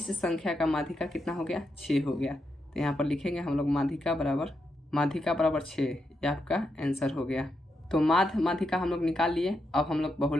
संख्या का माध्यिका कितना हो गया? 6 हो गया। तो यहाँ पर लिखेंगे हम लोग माध्यिका बराबर 6। यह आपका आंसर हो गया। तो माध्य माध्यिका हम लोग निकाल लिए। अब हम लोग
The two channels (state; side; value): normal; both; correlation 0.84